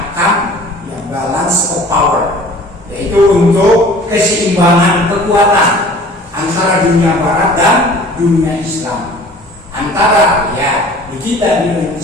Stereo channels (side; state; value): both; normal; correlation 0.47